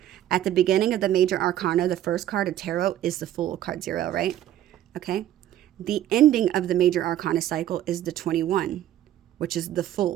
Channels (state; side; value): quieter; left; 12.3 dB